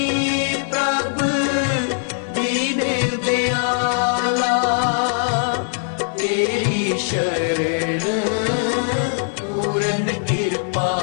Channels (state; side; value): silent; right; 63 dB below the other